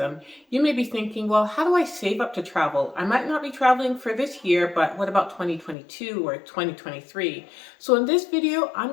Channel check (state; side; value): drops out; right; at 5.8 s